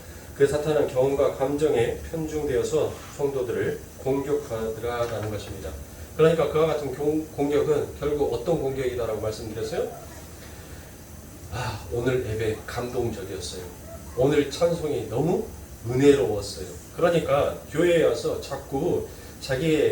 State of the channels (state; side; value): identical; both; correlation 1.00